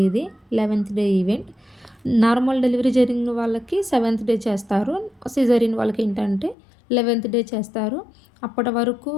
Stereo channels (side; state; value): right; drops out; at 6.6 s